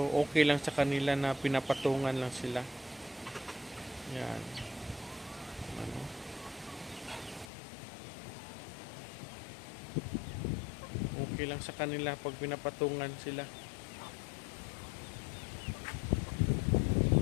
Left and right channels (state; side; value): drops out; right; at 7.5 s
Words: okay lang sa kanila na pinapatungan lang sila. Yan. Ano? Okay lang sa kanila pag pinapatungan sila.